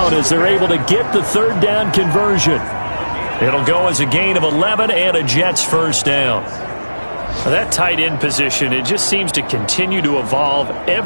as they're able to get the 3rd down conversion. It'll go as a gain of 11 and a Jets first down. That tight end position, it just seems to continue to evolve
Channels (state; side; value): inverted; both; correlation -1.00